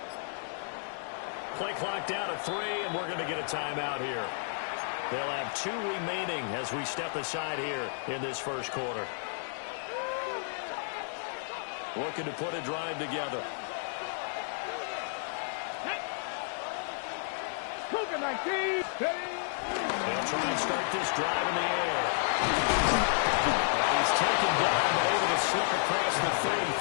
Play clock down to 3, and we're going to get a timeout here. They'll have 2 remaining as we step aside here in this first quarter. Looking to put a drive together. Cougar 19. They'll try and start this drive in the air. He's taken down, but able to slip across the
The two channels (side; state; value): right; silent; digital silence